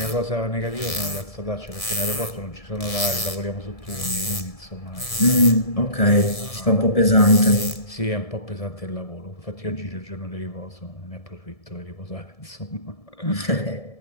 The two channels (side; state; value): right; late; 1.7 ms